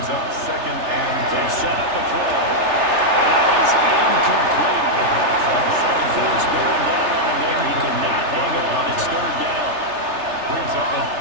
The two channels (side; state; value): left; late; 3.3 ms